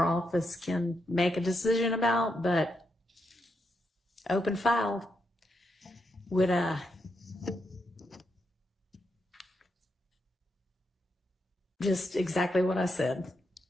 office can make a decision about, but open file would, just exactly what I said.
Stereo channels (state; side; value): normal; both; correlation 0.82